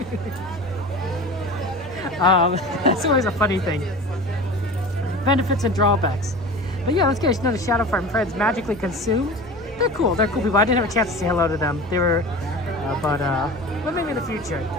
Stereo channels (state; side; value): normal; both; correlation 0.35